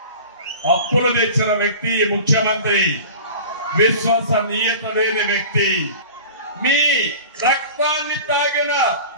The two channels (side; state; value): both; inverted; correlation -0.38